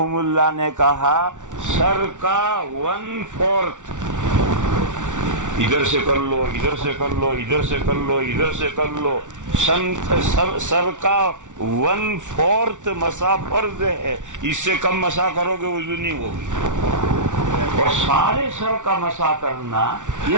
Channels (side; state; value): left; late; 0.86 ms